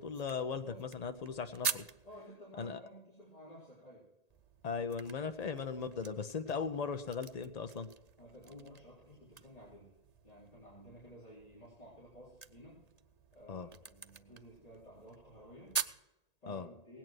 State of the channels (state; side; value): late; right; 1.8 ms